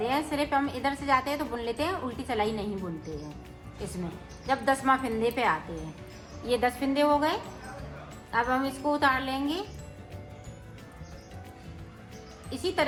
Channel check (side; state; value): both; identical; correlation 1.00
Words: हैं, सिर्फ हम इधर से जाते हैं तो बुन लेते हैं, उल्टी सिलाई नहीं बुनते हैं इसमें जब 10वां फिंदे पे आते हैं। ये 10 फिंदे हो गए। अब हम इसको उतार लेंगे। इसी